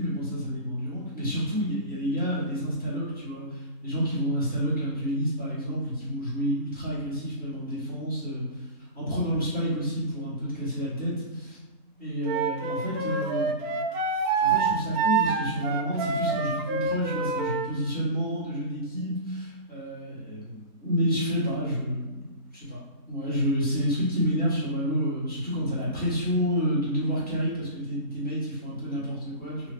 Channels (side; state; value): left; late; 3.7 ms